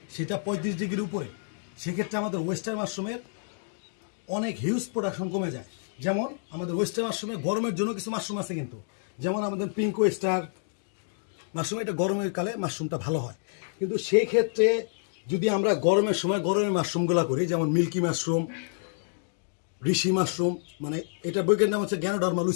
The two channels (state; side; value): silent; right; digital silence